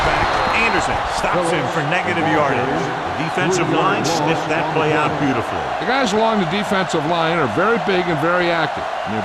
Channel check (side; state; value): both; identical; correlation 1.00